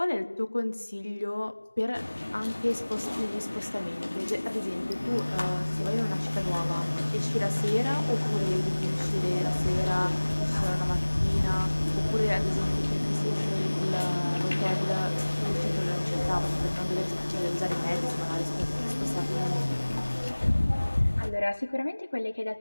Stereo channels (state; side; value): inverted; both; correlation -1.00